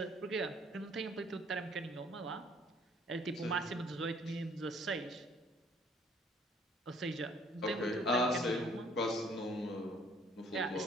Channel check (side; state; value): both; normal; correlation 0.60